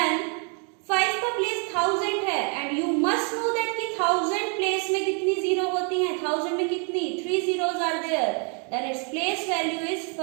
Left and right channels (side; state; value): left; quieter; 38.6 dB